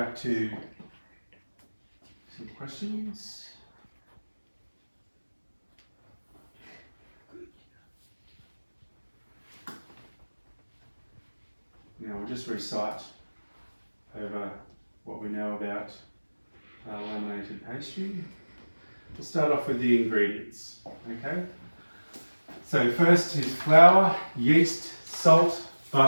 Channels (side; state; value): both; inverted; correlation -1.00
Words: to some questions. Now we'll just recite over what we know about laminated pastry. We'll start off with the ingredients, okay? So first is flour, yeast, salt,